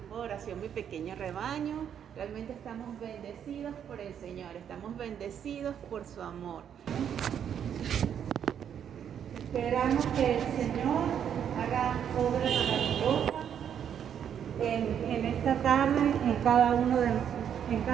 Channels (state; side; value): quieter; left; 8.8 dB